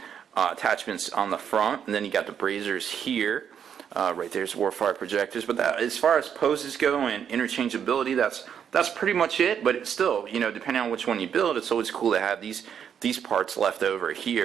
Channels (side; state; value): left; quieter; 8.2 dB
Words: attachments on the front, and then you got the braziers here. Right there's Warfire projectors. But as far as poses go and interchangeability, that's pretty much it. But it's still, depending on which one you build, it's always cool to have these parts left over